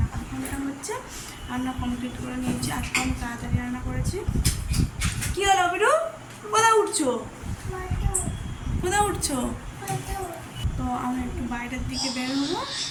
কনফার্মটা হচ্ছে রান্না কমপ্লিট করে নিয়েছি। আজকে আমি তাড়াতাড়ি রান্না করেছি। কী হলো বিরু? কোথায় উঠছো? কোথায় উঠছো? তো আমি একটু বাইরের দিকে বের হবো।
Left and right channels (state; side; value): identical; both; correlation 1.00